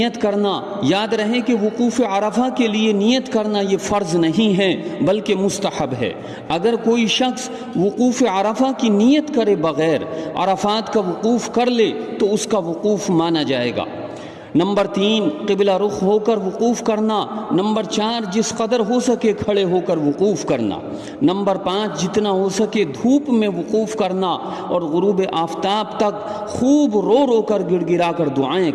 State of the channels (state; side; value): identical; both; correlation 1.00